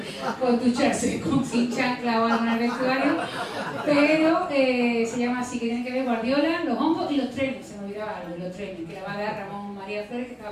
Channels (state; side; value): identical; both; correlation 1.00